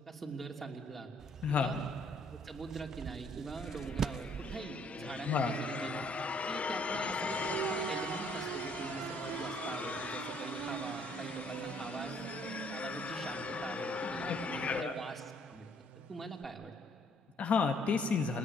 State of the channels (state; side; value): normal; both; correlation 0.64